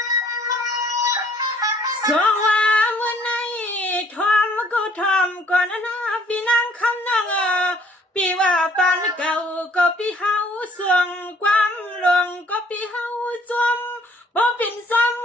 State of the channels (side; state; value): both; normal; correlation 0.61